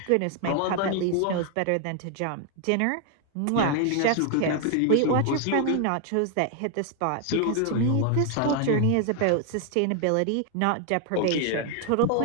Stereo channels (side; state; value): both; different; correlation 0.00